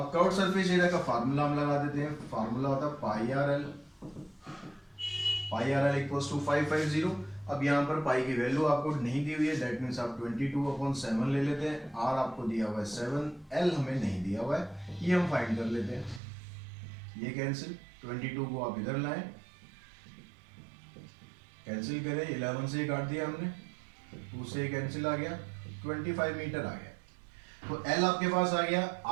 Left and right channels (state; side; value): drops out; left; at 16.2 s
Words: कर्व्ड सरफेस एरिया का फार्मूला हम लगा देते हैं। फार्मूला होता है pi r l equals to 550। अब यहाँ पर पाई की वैल्यू आपको नहीं दी हुई है, दैट मीन्स आप 22/7 ले लेते हैं। आर आपको दिया हुआ है 7, एल हमें नहीं दिया हुआ है, ये हम फाइंड कर लेते हैं। ये कैंसिल, 22 को आप इधर लाएं, कैंसिल करें, 11 से काट दिया हमने, 2 से कैंसिल आ गया, 25 मीटर आ गया। तो एल आपके पास आ गया,